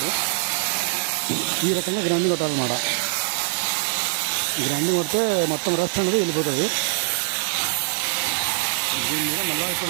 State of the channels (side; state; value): left; silent; digital silence